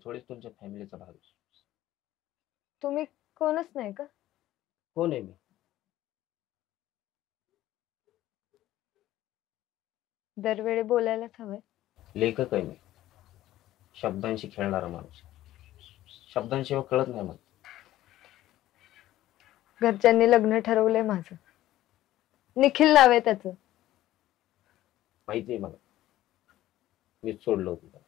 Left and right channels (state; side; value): quieter; right; 14.5 dB